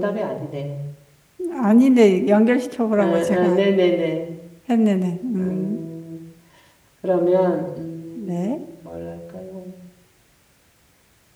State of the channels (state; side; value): identical; both; correlation 1.00